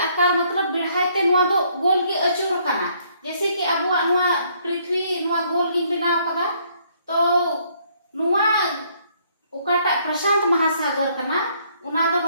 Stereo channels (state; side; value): inverted; both; correlation -0.67